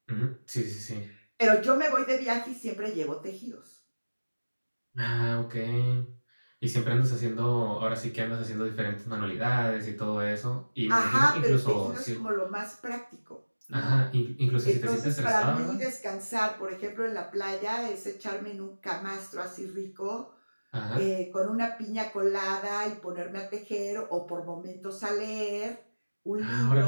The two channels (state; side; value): inverted; both; correlation -1.00